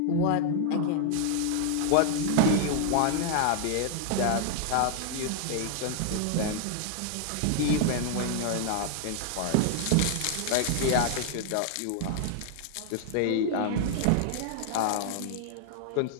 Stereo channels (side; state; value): both; different; correlation 0.00